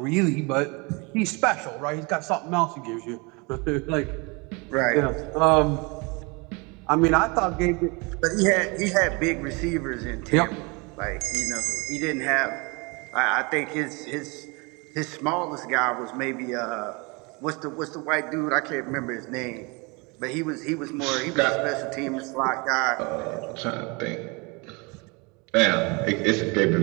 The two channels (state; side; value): quieter; left; 28.7 dB